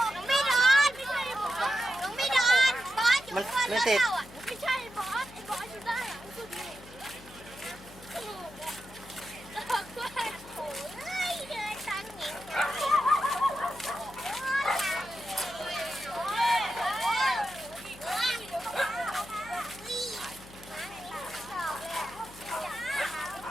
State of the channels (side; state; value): left; noise; hum, 19 dB below the sound